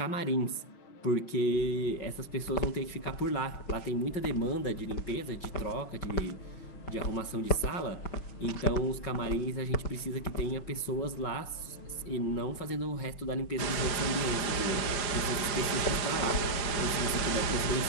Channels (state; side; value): late; right; 5.6 ms